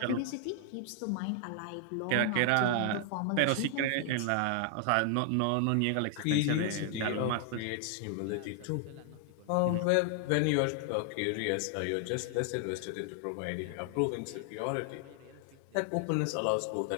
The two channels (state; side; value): different; both; correlation 0.00